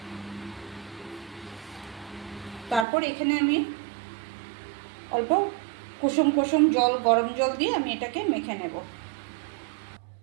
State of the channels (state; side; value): drops out; left; at 2.9 s